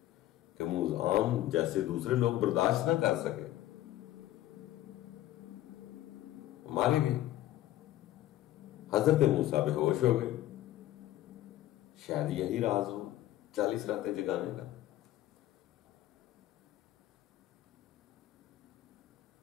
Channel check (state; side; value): quieter; right; 14.3 dB